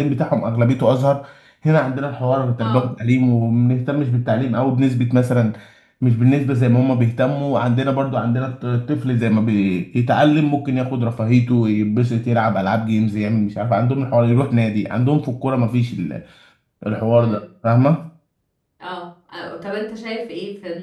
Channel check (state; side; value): identical; both; correlation 1.00